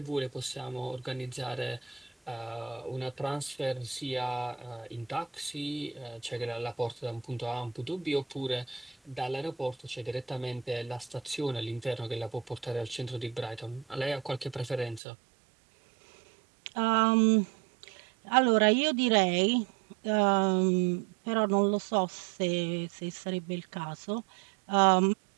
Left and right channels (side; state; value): left; drops out; at 15.0 s